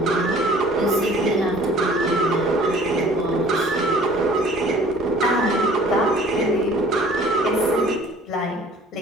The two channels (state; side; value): normal; both; correlation 0.52